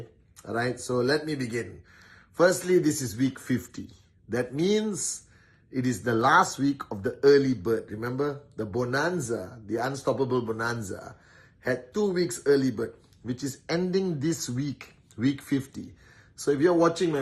All right, so let me begin. Firstly, this is week 50. That means it is the last week of the early bird. Remember, the bonanza, the unstoppable bonanza, had 2 weeks early bird, which is ending this week, week 50. So if you're watching my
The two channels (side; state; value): both; identical; correlation 1.00